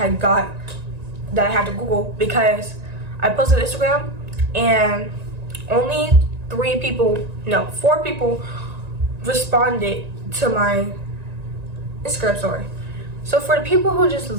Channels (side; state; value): left; late; 1.9 ms